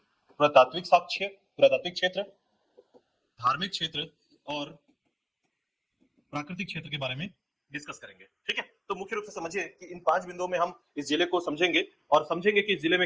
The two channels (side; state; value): both; identical; correlation 1.00